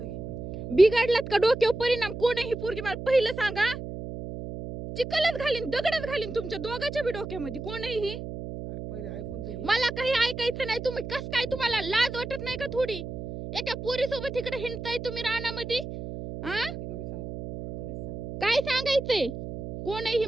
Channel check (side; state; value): right; noise; hum, 8 dB below the sound